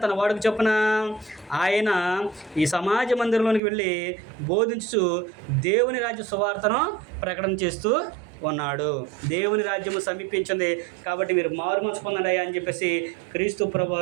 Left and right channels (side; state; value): left; drops out; at 3.6 s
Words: తన వాడికి చొప్పున ఆయన ఈ సమాజ మందిరంలోనికి వెళ్ళి బోధించుచు దేవుని రాజ్య సువార్తను ప్రకటన చేస్తూ ఉన్నాడు. దేవుని రాజ్యము సమీపించింది కాబట్టి మీరు మారుమనసు పొందండి అని చెప్పేసి క్రీస్తు